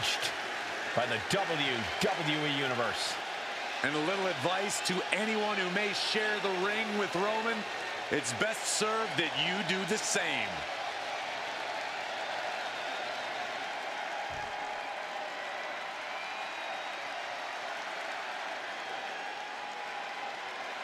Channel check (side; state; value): both; identical; correlation 1.00